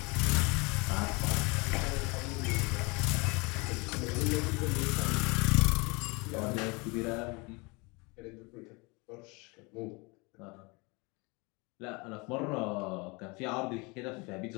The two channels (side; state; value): right; quieter; 28.0 dB